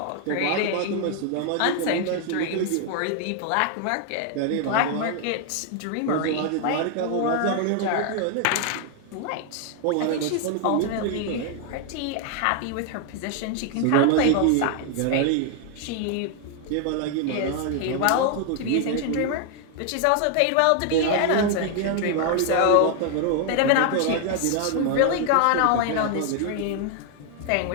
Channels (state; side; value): different; both; correlation 0.00